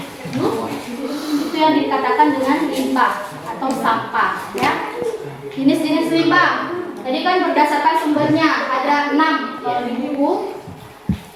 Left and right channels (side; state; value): both; identical; correlation 1.00